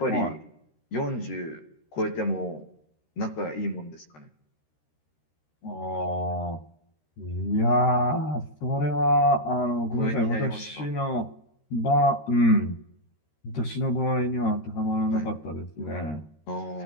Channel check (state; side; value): late; right; 13 ms